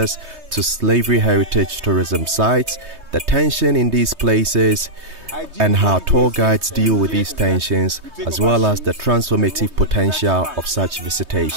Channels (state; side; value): late; left; 3.2 ms